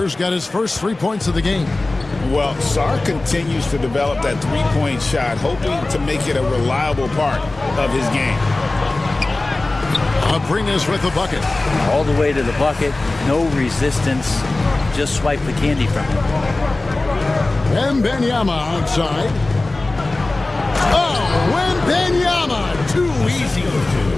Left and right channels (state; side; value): quieter; right; 3.0 dB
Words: got his first 3 points of the game. Well, Sarr continues to develop that three-point shot, hoping to make it a reliable part of his game. Abrinas with the bucket. All the way to the bucket, no resistance, just swipe the candy from him. Wembanyama outside. Oh, Wembanyama, too easy.